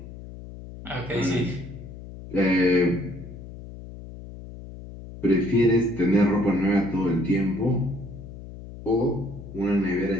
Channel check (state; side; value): noise; left; hum, 14 dB below the sound